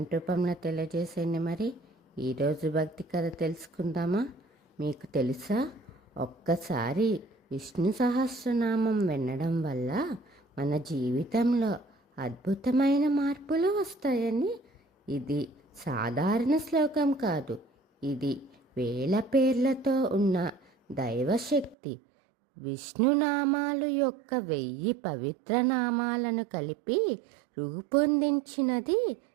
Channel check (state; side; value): drops out; left; at 21.8 s